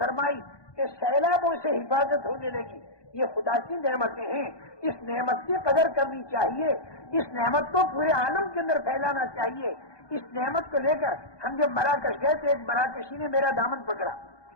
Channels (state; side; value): late; right; 1.2 ms